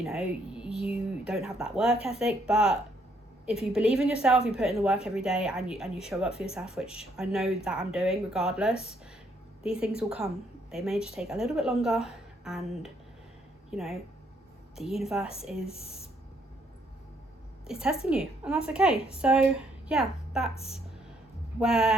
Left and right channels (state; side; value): normal; both; correlation 0.70